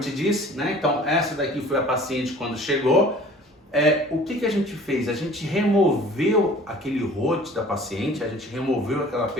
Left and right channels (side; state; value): both; normal; correlation 0.48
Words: disse, né? Então essa daqui foi a paciente quando chegou. O que a gente fez? A gente removeu aquele rote da paciente, a gente removeu aquela